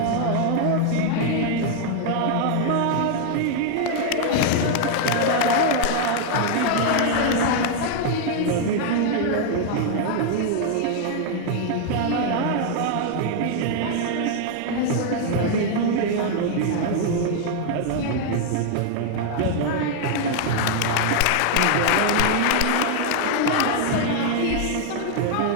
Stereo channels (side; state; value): both; different; correlation 0.00